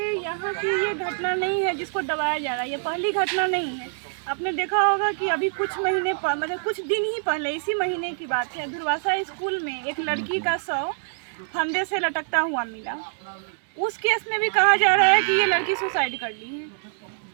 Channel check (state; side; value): silent; left; digital silence